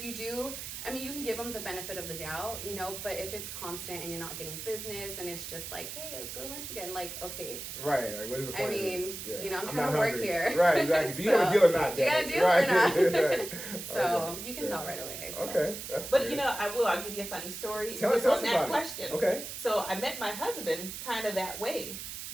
you do, I mean, you can give them the benefit of the doubt, but if it's constant and you're not getting business and it's just like, hey, let's go to lunch again, like, okay, Right. Like, what is the I point of mean, this? Yeah. I'm not trying to work hungry. here. Right. Exactly. Do you have a So, deal or not? do you got a Daddy? deal or Right. not? Right. So Okay. you can tell right away. So. Okay. That's But good. I'll give you a funny story Tell just us on that about it. question. Okay. So I met my husband kind of that way.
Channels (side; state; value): right; noise; hiss, 8 dB below the sound